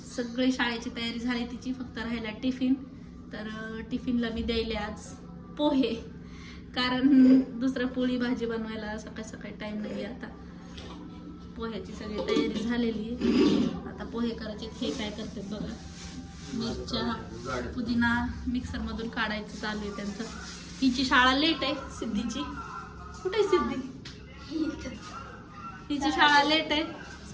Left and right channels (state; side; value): identical; both; correlation 1.00